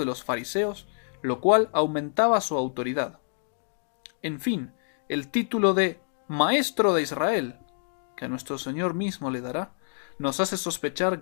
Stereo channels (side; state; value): right; silent; digital silence